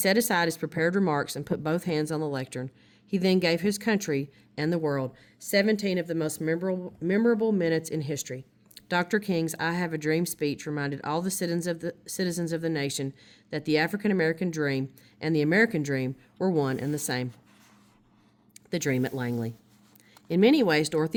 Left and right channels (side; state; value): both; identical; correlation 1.00